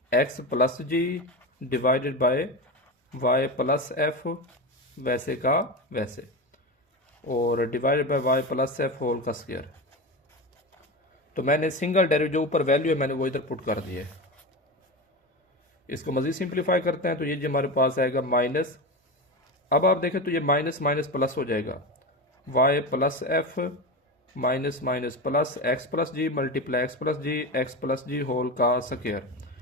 x plus g divided by y plus f वैसे का वैसे, और divided by y plus f whole का स्क्वायर। तो मैंने सिंगल डेरिवेटिव जो ऊपर वैल्यू है मैंने वो इधर पुट कर दिया है। इसको मजीद सिंप्लीफाई करते हैं तो ये जो हमारे पास आएगा माइनस, अब आप देखें तो ये माइनस माइनस प्लस हो जाएगा, y plus f minus minus plus x plus g multiply x plus g whole का square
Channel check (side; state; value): both; normal; correlation 0.22